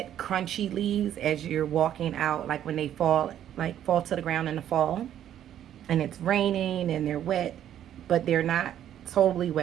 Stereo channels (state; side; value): quieter; left; 10.8 dB